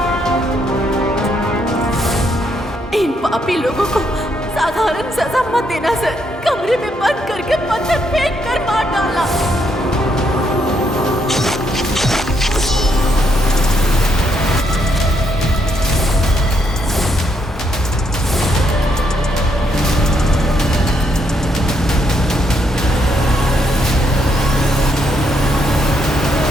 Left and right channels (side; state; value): both; normal; correlation 0.75